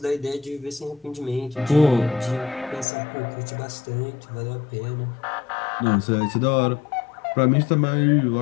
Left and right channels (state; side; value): drops out; right; at 2.9 s